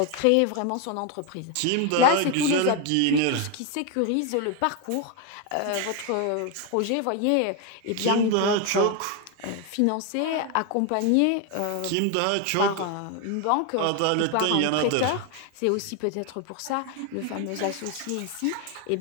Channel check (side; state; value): both; different; correlation 0.01